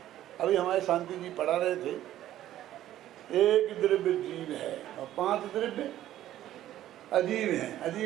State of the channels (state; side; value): quieter; left; 13.0 dB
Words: अभी हमारे शांति जी पढ़ा रहे थे, एक द्रव्य जीव है और 5 द्रव्य अजीब है।